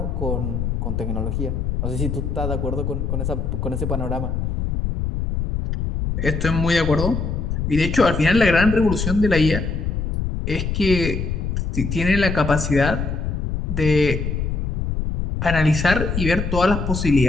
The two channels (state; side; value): noise; left; rumble, 2 dB below the sound